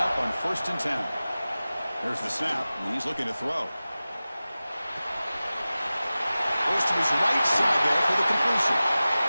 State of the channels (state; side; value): inverted; both; correlation -0.96